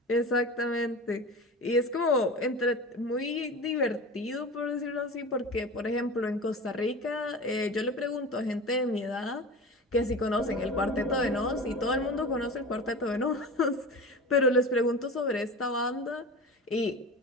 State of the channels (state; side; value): normal; both; correlation 0.32